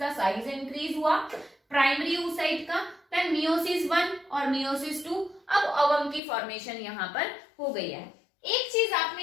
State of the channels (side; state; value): right; drops out; at 6.2 s